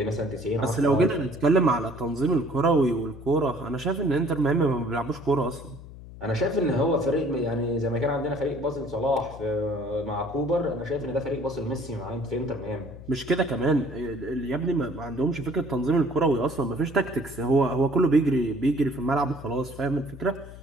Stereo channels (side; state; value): left; noise; hum, 15 dB below the sound